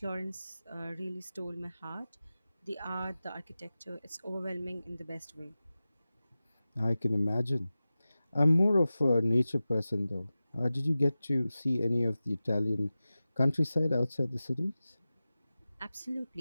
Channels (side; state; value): both; inverted; correlation -0.96